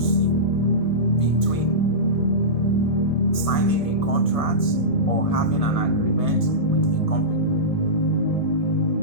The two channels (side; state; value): right; late; 1.7 ms